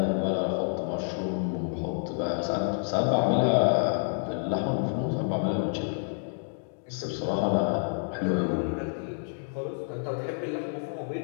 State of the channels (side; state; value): right; silent; digital silence